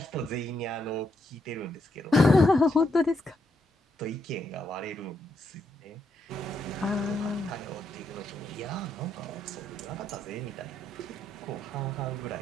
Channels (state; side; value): normal; both; correlation 0.79